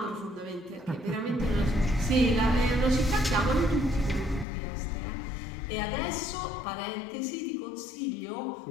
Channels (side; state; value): right; drops out; at 4.5 s